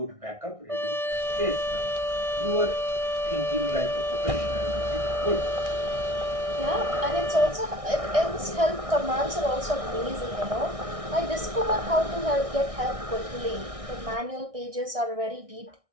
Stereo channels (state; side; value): late; left; 1.6 ms